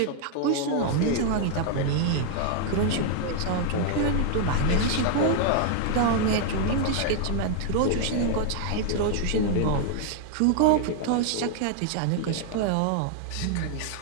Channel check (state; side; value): different; both; correlation 0.00